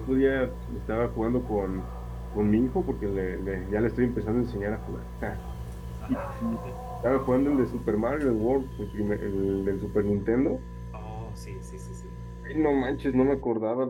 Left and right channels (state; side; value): identical; both; correlation 1.00